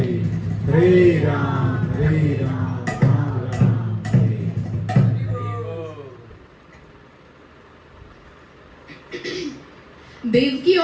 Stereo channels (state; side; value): identical; both; correlation 1.00